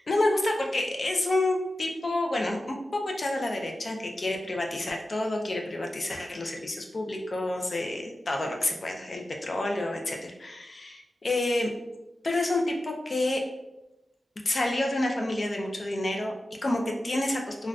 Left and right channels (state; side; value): normal; both; correlation 0.93